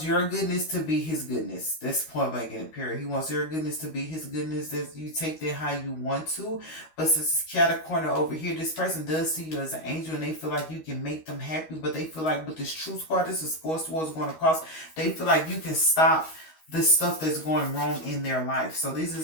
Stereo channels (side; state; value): right; late; 13 ms